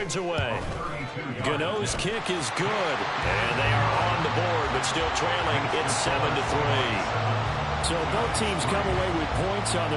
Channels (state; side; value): identical; both; correlation 1.00